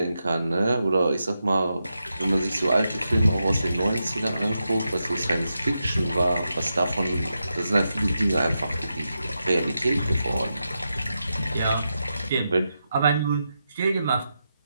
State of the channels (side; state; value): both; inverted; correlation -0.87